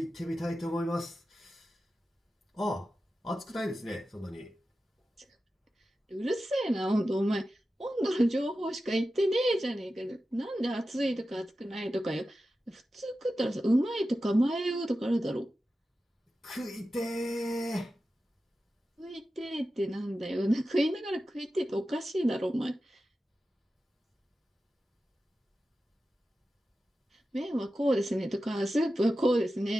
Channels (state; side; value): normal; both; correlation 0.93